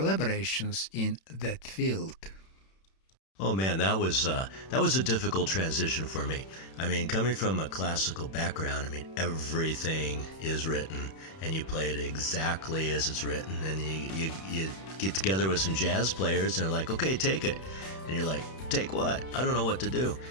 in that field. Oh man, that was a difficult transition for me. I mean, coming from a classical background, I mean, everything is written, and you play it exactly as it's written, and you get together with some jazz players, and they're like, okay, take it, and you're like, take what? I don't know what to do,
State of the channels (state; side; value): late; right; 31 ms